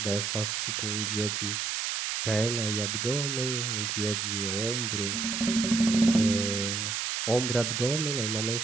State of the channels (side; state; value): right; noise; hiss, 1 dB below the sound